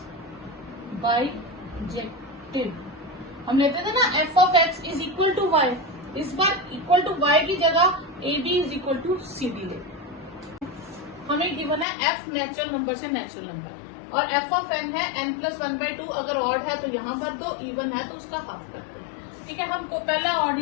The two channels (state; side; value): drops out; right; at 11.9 s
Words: बाइजेक्टिव। हम लेते थे ना f of x is equal to y, इस बार इक्वल टू y की जगह A B is equal to C D ले। हमें गिवन है f नेचुरल नंबर से नेचुरल नंबर और f ऑफ n है n प्लस 1/2। अगर ऑड है तो यहाँ भर दो, इवन है तो उसका हाफ कर दो। ठीक है, हमको पहला ऑड